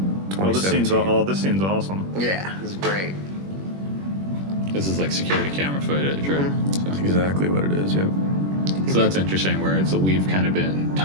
Oh, this scene's 2017. this scene's awesome. Yeah, this is great. This is like security camera footage, right? That's exactly what it is. Yep. So that's interesting. Where it's we've kind of been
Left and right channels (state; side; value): late; left; 21 ms